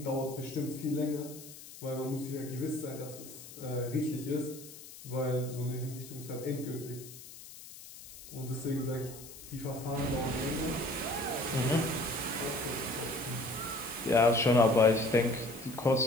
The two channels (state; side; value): noise; left; hiss, 16 dB below the sound